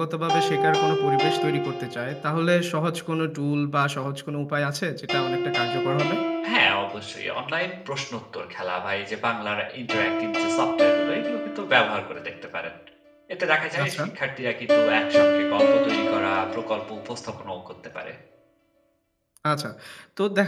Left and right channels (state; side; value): identical; both; correlation 1.00